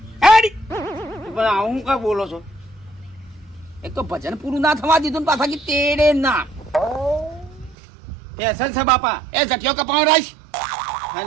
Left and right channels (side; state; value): left; drops out; at 7.8 s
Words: હેડી પણ આવું કા બોલો છો એક તો ભજન પૂરું ના થવા દીધું ને પાછા કે તેડે ના ફેશન છે બાપા એ જટિયો કપાણ રાઈશ